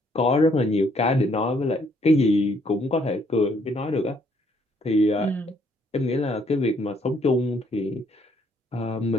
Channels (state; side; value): normal; both; correlation 0.67